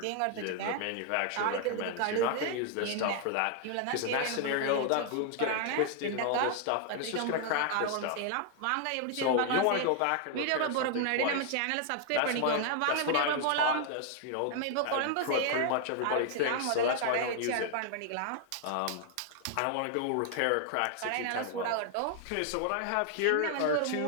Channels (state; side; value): different; both; correlation 0.00